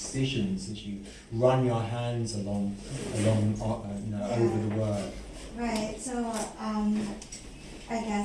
as you run your hands along over the work. Right. So I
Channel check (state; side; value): identical; both; correlation 1.00